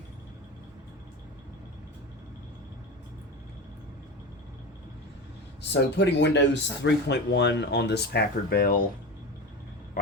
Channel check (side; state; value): both; normal; correlation 0.26